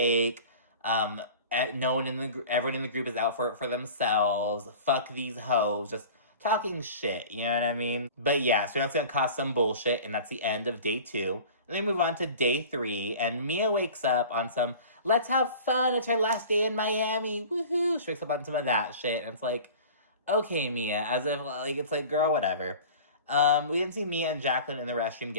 Everyone in the group is out for themselves. Fuck these hoes. Just talking shit, you know what I mean? But yeah, so that's gonna cause some bullshit, and that's the end of day 2. And then we move on to day 3, and Mia wakes up on some, let's have fun, it's her last day in Miami, woohoo! She wakes up on some of that shit, and it's like, okay, Mia, as if, like, it's like, girl, whatever. We didn't see Mia and Jacqueline in the restroom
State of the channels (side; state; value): both; inverted; correlation -0.40